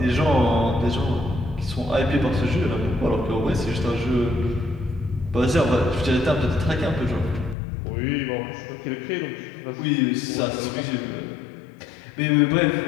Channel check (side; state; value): right; drops out; at 7.6 s